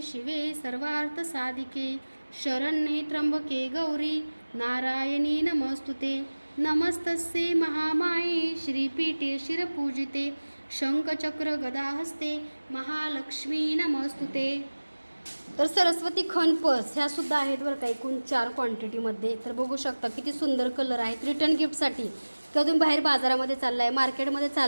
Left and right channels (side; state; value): both; inverted; correlation -1.00